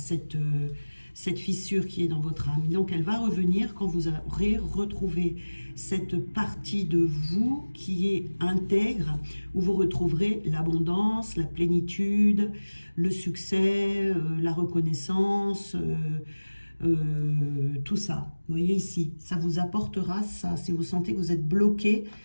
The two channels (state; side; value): inverted; both; correlation -1.00